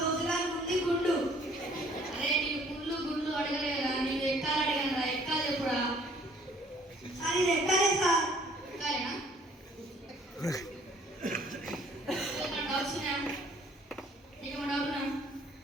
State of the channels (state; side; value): normal; both; correlation 0.58